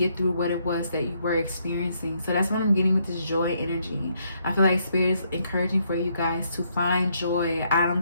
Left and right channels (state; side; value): inverted; both; correlation -0.73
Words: through what it was that you were experiencing. So that's what I'm getting with this joy energy. I feel like Spirit is encouraging for you guys to find joy. I